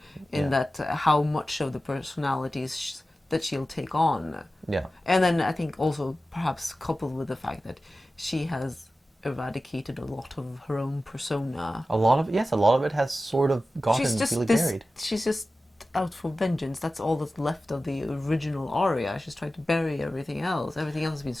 in that how much of the personalities that she'll take on. Yeah. And then I think also perhaps coupled with the fact that she has eradicated a lot of her own persona. A lot of it has sort of gotten really buried. She's just out for vengeance. That's all that's left of the original Arya. She's trying to bury everything else. Everything else has been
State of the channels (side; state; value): both; normal; correlation 0.95